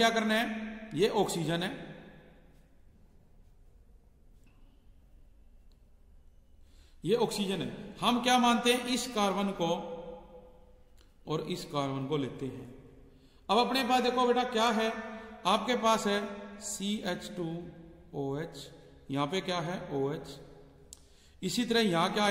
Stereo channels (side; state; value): both; identical; correlation 1.00